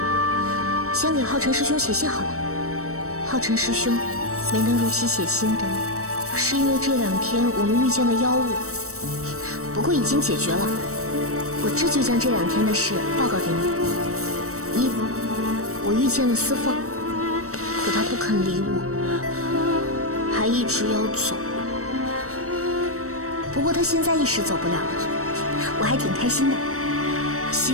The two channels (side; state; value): left; late; 0.65 ms